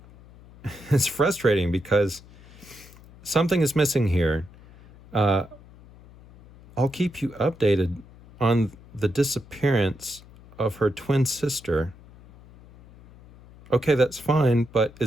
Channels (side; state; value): left; noise; hum, 22 dB below the sound